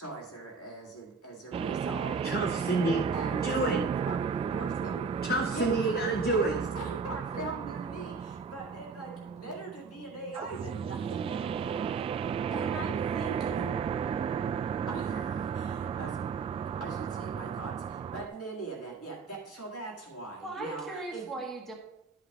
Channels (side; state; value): left; quieter; 4.8 dB